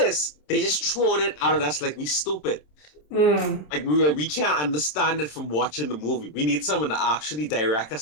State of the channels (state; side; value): late; right; 27 ms